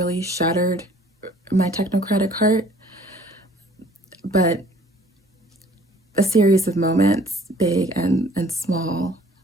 shattered my technocratic heart, but a series of moments, big and small,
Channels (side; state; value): both; normal; correlation 0.55